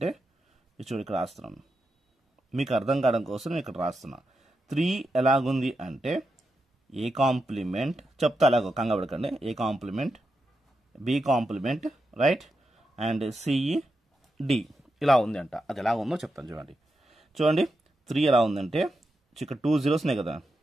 చూడు ఇక్కడ రాస్తున్నాను, మీకు అర్థం కావడం కోసం నేను ఇక్కడ రాస్తున్నా. 3 ఎలాగుంది అంటే ఏ కాంప్లిమెంట్ చెప్తా, అలాగో కంగాపడకండి, A complement, B complement, right, and CE D ఇలా ఉంది అంట. అది ఎలా ఉందో చెప్తాను చూడండి. చూడండి 3 ఎలా ఉందంటే ఇక్కడ 2 zeros ఉన్నాయి కదా,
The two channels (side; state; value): both; normal; correlation 0.87